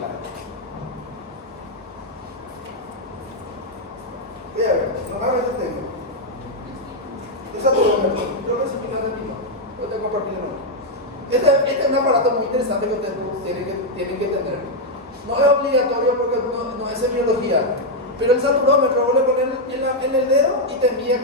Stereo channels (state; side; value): normal; both; correlation 0.00